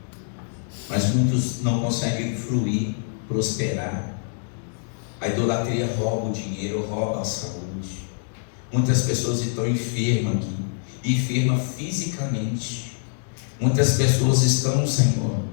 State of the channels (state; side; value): silent; right; digital silence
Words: mas muitos não conseguem fluir, prosperar. A idolatria rouba o dinheiro, rouba a saúde. Muitas pessoas estão enfermas aqui, enfermas fisicamente. Muitas pessoas estão, Senhor,